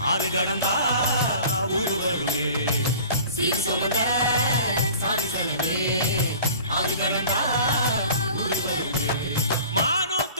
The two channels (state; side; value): inverted; both; correlation -0.45